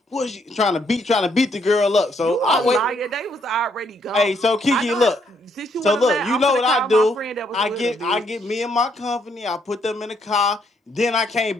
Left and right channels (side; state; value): both; normal; correlation 0.72